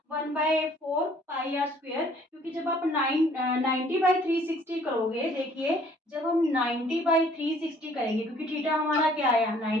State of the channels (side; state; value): both; normal; correlation 0.58